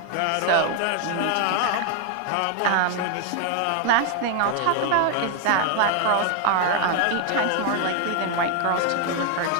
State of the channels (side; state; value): both; different; correlation 0.00